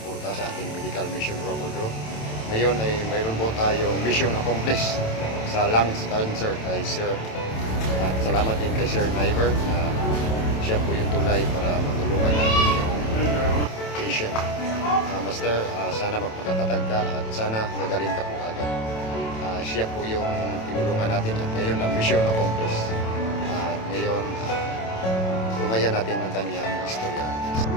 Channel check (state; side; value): late; right; 27 ms